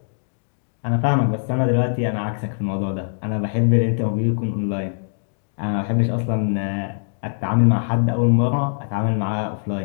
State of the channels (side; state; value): right; silent; digital silence